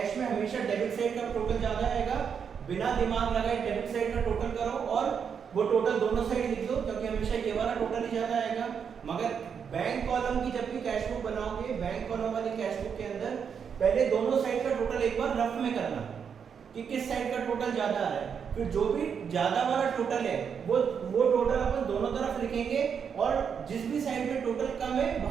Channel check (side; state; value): left; quieter; 7.0 dB